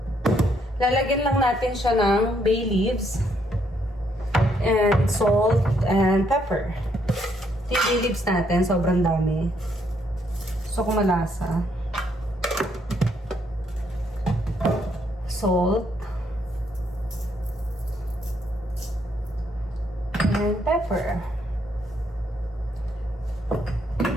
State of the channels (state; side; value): normal; both; correlation 0.72